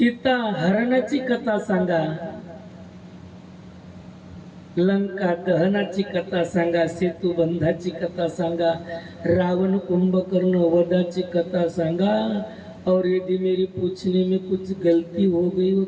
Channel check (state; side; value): identical; both; correlation 1.00